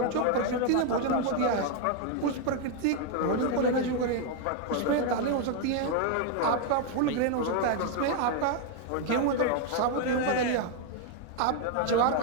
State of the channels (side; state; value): both; different; correlation 0.00